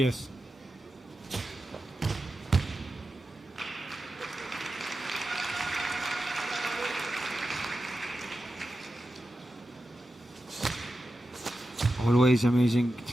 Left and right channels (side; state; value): both; normal; correlation 0.91